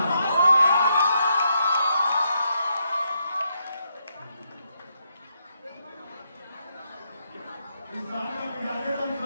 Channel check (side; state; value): both; inverted; correlation -0.79